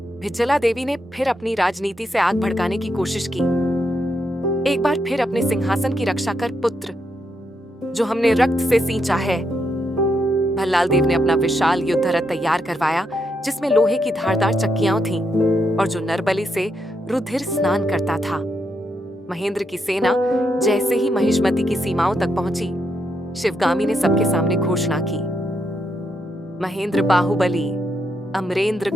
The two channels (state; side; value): normal; both; correlation 0.80